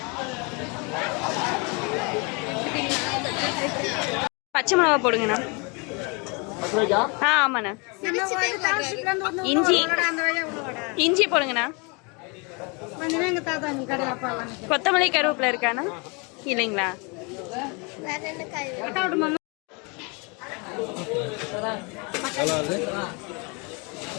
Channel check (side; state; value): right; quieter; 31.4 dB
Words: பச்சை மிளகா போடுங்கண்ணா. ஆமாண்ணா. இஞ்சி இஞ்சி போடுங்கண்ணா. கொத்தமல்லி கருவேப்பிலை இருக்காண்ணா? இல்லைங்களா? வேற என்ன காய்?